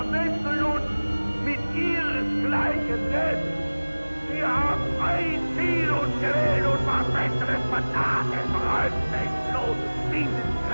uns mit ihresgleichen selbst. Wir haben ein Ziel uns gewählt und was Besseres vertan. Es räumt sich bloß dieses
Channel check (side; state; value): both; inverted; correlation -1.00